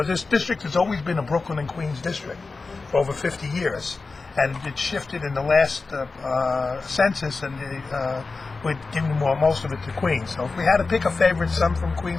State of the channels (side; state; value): right; quieter; 4.0 dB